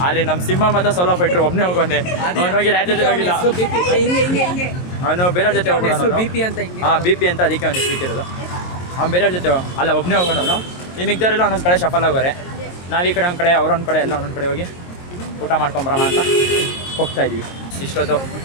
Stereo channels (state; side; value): late; right; 22 ms